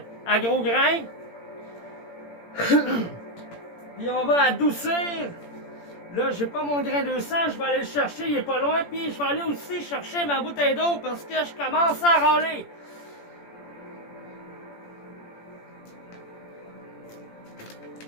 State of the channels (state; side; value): late; right; 17 ms